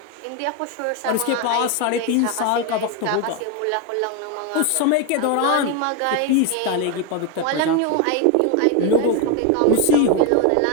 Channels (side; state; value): both; different; correlation 0.02